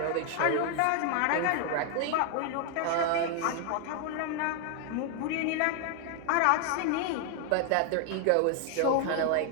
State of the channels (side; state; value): both; different; correlation 0.00